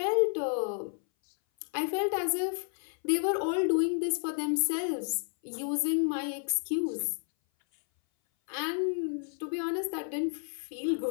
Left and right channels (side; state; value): right; silent; 57 dB below the other